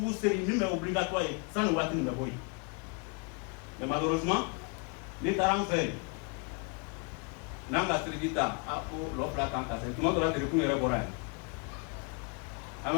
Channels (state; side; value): quieter; right; 33.7 dB